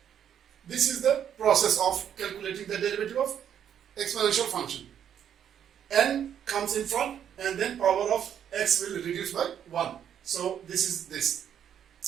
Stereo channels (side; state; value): left; quieter; 9.2 dB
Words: This is the process of calculating the derivative of exponential function. N comes in front and then power of x will reduce by 1. So this is this.